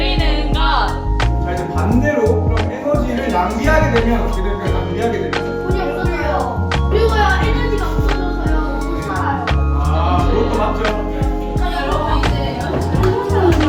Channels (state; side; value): identical; both; correlation 1.00